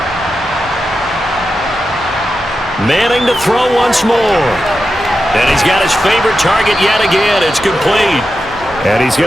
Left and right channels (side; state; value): both; normal; correlation 0.90